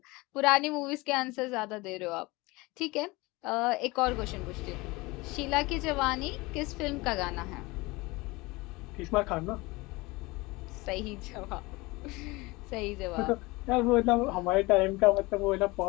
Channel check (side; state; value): right; quieter; 23.0 dB